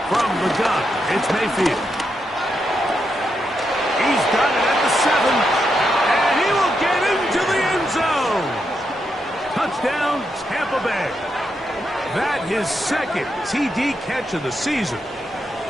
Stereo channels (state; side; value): normal; both; correlation 0.83